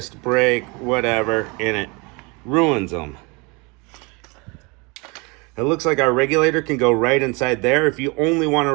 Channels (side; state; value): left; quieter; 28.7 dB